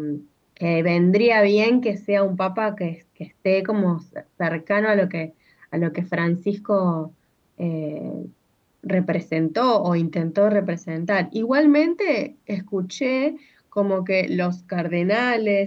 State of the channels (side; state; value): both; identical; correlation 1.00